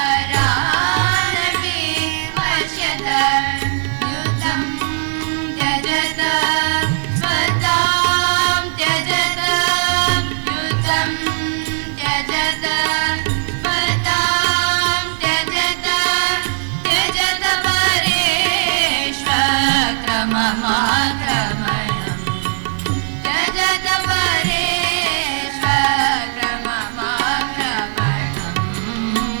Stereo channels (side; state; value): left; silent; digital silence